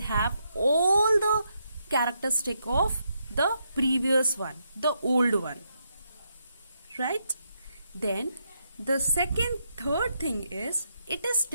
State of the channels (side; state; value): both; inverted; correlation -0.80